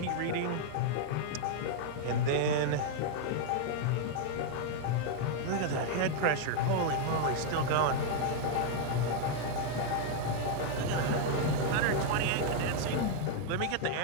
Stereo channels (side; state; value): both; different; correlation 0.00